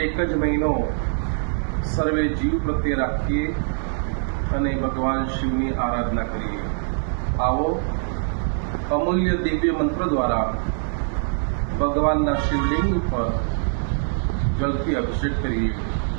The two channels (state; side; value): silent; left; 63 dB below the other